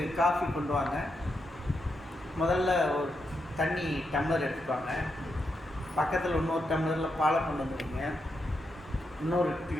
காஃபி கொண்டு வாங்க, முதல்ல ஒரு தண்ணி டம்ளர் எடுத்துப்பாங்க, பக்கத்தில் இன்னொரு டம்ளரில் பாலை கொண்டு வந்துடுங்க, இன்னொரு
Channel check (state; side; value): normal; both; correlation 0.84